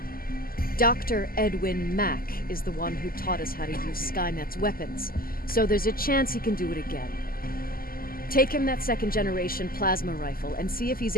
Dr. Edwin Mack is the one who taught us how to use Skynet's weapons, so there's a chance he can do it again. Take him that second-generation plasma rifle and see if he's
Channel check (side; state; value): right; late; 0.42 ms